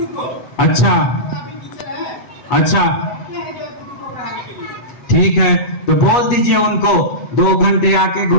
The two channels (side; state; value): right; late; 8.2 ms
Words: अच्छा अच्छा, ठीक है, तो बोल दीजिए उनको 2 घंटे आके